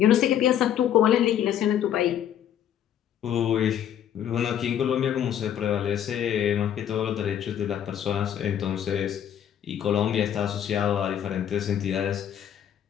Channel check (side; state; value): right; quieter; 10.0 dB